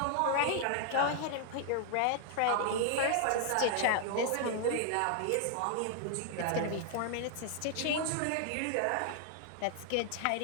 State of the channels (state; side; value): different; both; correlation 0.00